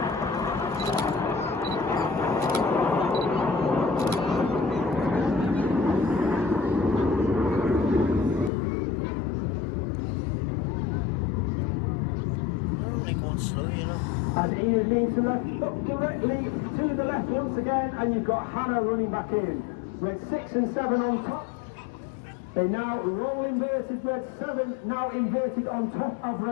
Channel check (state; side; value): drops out; right; at 8.5 s